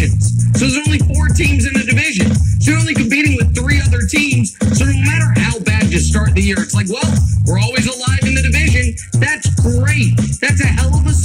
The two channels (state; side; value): identical; both; correlation 1.00